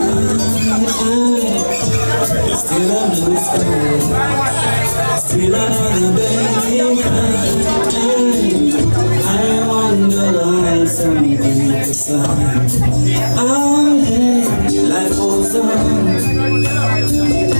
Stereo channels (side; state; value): both; inverted; correlation -1.00